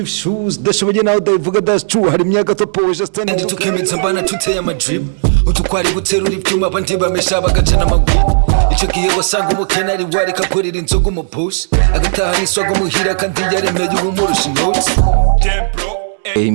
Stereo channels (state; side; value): silent; left; 71 dB below the other